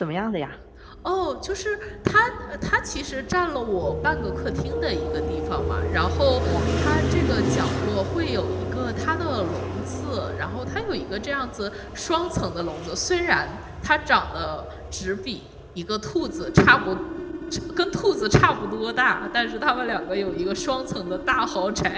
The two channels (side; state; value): both; identical; correlation 1.00